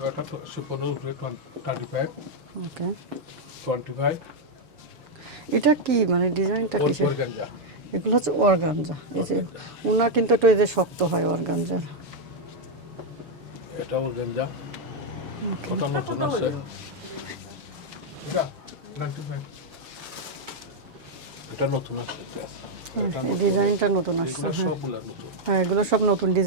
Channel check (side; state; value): left; late; 6.6 ms